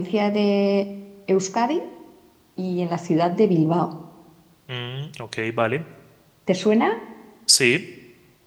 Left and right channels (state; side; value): identical; both; correlation 1.00